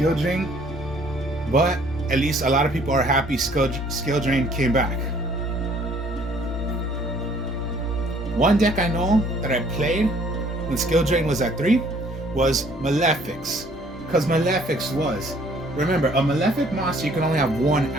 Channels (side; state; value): both; normal; correlation 0.59